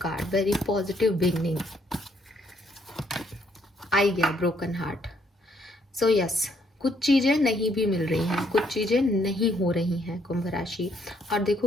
card, very positive beginning, आई गया ब्रोकन हार्ट। सो यस, कुछ चीज़ें नहीं भी मिल रही हैं, कुछ चीज़ें नहीं हो रही हैं कुंभ राशि। और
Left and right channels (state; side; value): normal; both; correlation 0.70